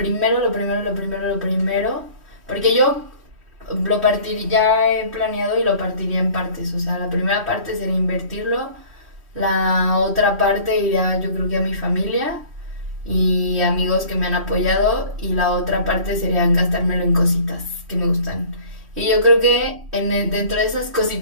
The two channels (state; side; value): late; left; 3.1 ms